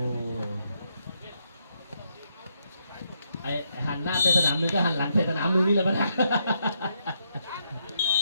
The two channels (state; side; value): inverted; both; correlation -0.78